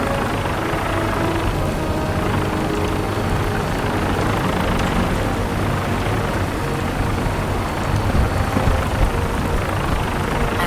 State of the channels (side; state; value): both; identical; correlation 1.00